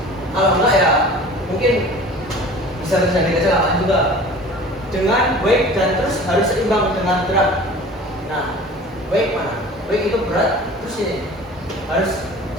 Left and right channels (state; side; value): normal; both; correlation 0.42